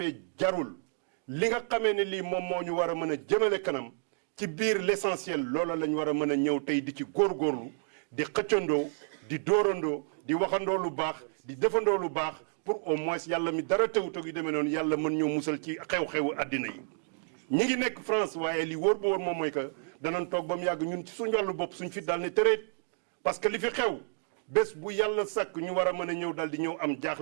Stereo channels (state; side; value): silent; left; digital silence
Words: jarul li nga xamee ne lii moom moo ñu war a mën a jëmale kanam ci biir l'essentiel loola lañ war a mën a ñëw tey di ci góorgóorlu di xëccandoo di dóorandoo di waxandoo lu baax di defandoo lu baax pour au moins yàlla mi dara tewut ak yu demee noonu yàlla mën ñoo musal ci xew-xewu àddina yi ñi ngi nekk France waaye li wóor ba wóor moom mooy que danañ toog ba mu yàgg ñun ci suñu wàllu bopp suñ fi daal ne tëreet parce que li fi xew bés bu yàlla sàkk ñu war a mën a ñëw dal di ñëw am